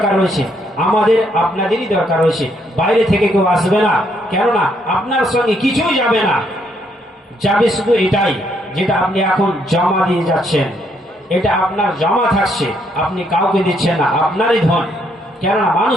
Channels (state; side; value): normal; both; correlation 0.72